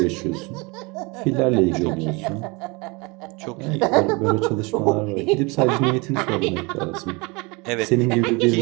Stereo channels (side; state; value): left; quieter; 27.3 dB